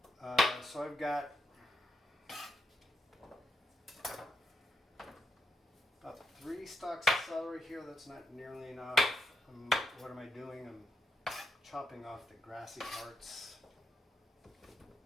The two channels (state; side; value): normal; both; correlation 0.82